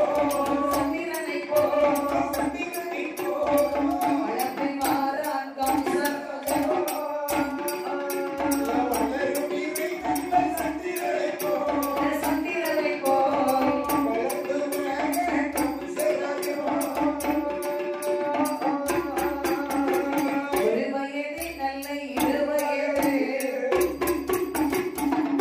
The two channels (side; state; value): both; identical; correlation 1.00